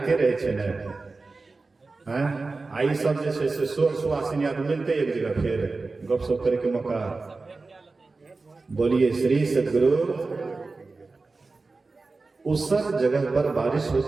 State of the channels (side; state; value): left; quieter; 3.8 dB